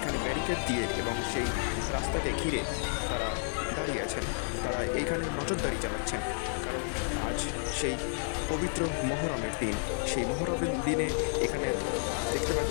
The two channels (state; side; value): silent; right; digital silence